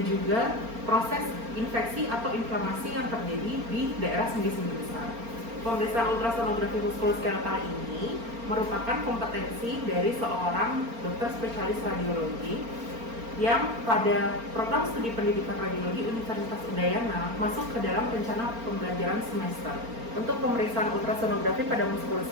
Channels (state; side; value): late; left; 4.4 ms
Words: juga proses infeksi atau inflamasi yang terjadi di daerah sendi-sendi besar. Pemeriksaan ultrasonografi muskuloskeletal ini merupakan kompetensi dari seorang dokter spesialis radiologi yang pada program studi pendidikan radiologi Universitas Udayana masuk ke dalam rencana pembelajaran semester. Untuk pemeriksaan ultrasonografi pada